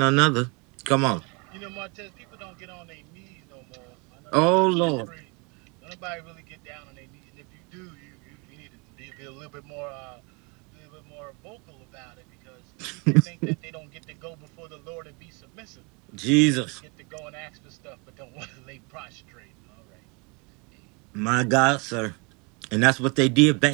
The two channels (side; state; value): left; quieter; 30.9 dB